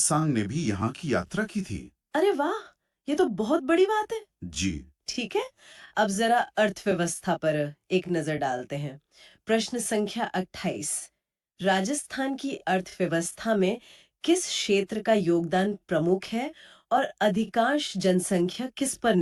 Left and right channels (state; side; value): identical; both; correlation 1.00